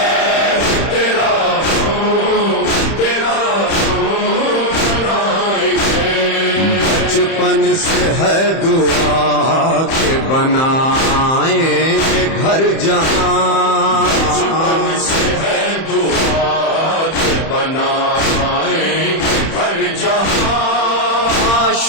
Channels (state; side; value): late; right; 31 ms